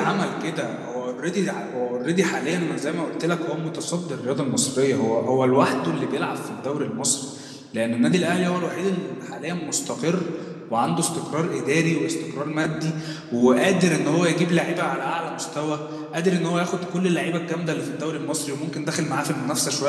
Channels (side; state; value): both; identical; correlation 1.00